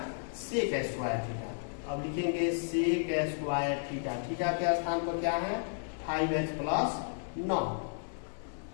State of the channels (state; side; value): silent; right; digital silence